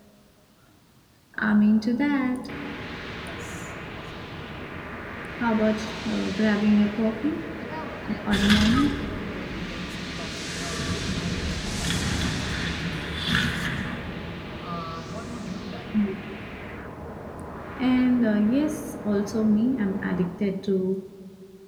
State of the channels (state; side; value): identical; both; correlation 1.00